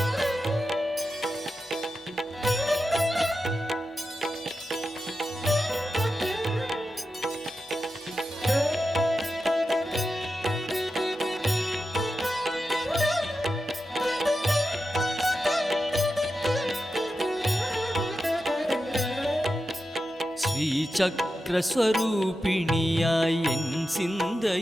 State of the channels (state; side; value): normal; both; correlation 0.90